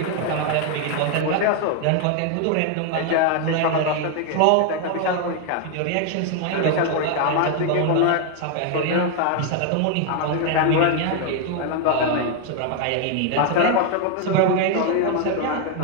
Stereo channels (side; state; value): both; different; correlation 0.00